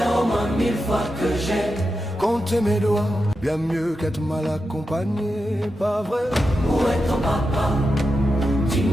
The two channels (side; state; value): both; normal; correlation 0.89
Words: au moins 1000 fois que j'ai compté mes doigts, bien mieux qu'être mal accompagné, pas vrai? Où est ton papa?